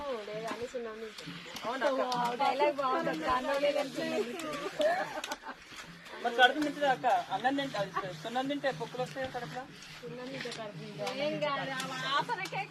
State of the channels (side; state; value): both; identical; correlation 1.00